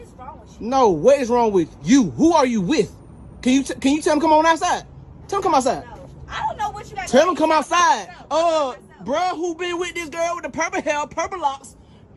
is wrong with you? No, what is wrong with you? Who are you with? Can you tell him come on outside? Tell him come outside. No, I don't know what you got. Tell him come outside. Bruh, who been with this girl with the purple hair, purple locks?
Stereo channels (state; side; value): identical; both; correlation 1.00